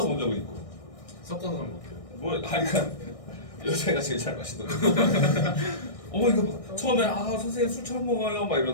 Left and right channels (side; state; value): right; late; 1.6 ms